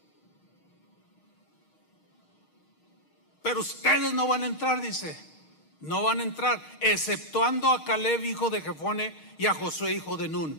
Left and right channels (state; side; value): late; right; 6.5 ms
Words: Pero ustedes no van a entrar, dice. No van a entrar, exceptuando a Caleb, hijo de Jefone, y a Josué, hijo de Nun.